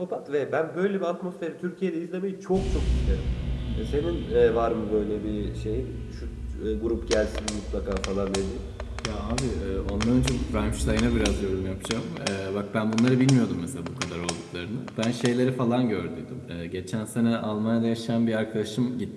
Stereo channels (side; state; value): both; identical; correlation 1.00